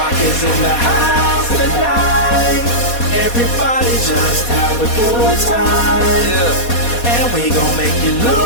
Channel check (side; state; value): right; late; 4.2 ms